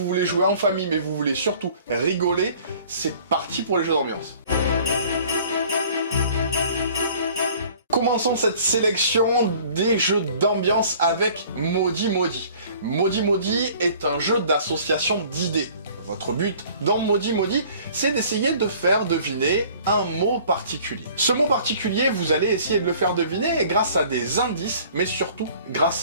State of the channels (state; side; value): inverted; both; correlation -0.51